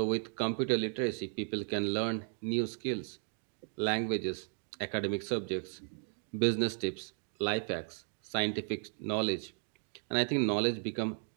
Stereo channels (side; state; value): left; silent; 54 dB below the other